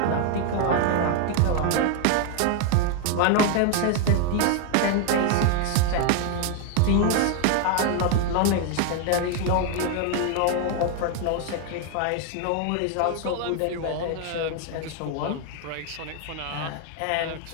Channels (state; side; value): different; both; correlation 0.00